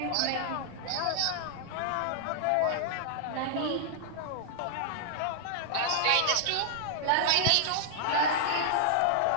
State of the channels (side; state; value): both; different; correlation -0.01